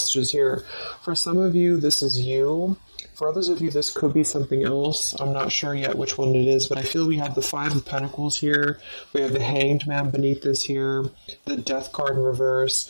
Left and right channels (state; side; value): inverted; both; correlation -1.00